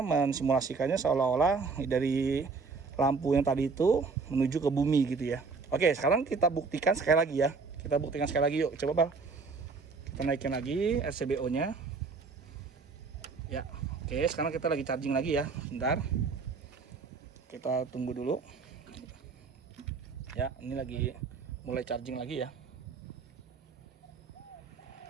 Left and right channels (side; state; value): left; quieter; 4.7 dB